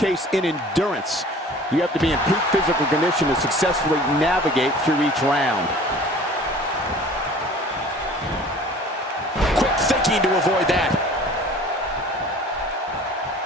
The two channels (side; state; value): both; normal; correlation 0.46